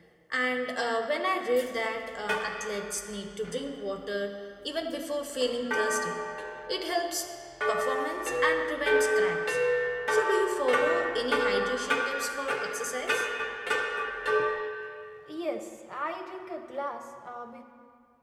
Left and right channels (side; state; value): both; identical; correlation 1.00